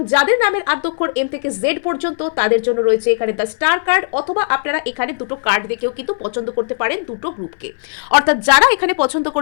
যাদের নামের আদ্যক্ষর এম থেকে জেড পর্যন্ত তাদের জন্য রয়েছে এখানে দ্য স্টার কার্ড, অথবা আপনারা এখানে দুটো কার্ড দেখেও কিন্তু পছন্দ করতে পারেন দুটো গ্রুপকে। অর্থাৎ যারা এখানে পছন্দ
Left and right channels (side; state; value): right; silent; 61 dB below the other